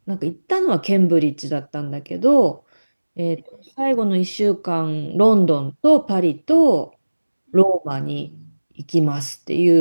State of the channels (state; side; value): inverted; both; correlation -1.00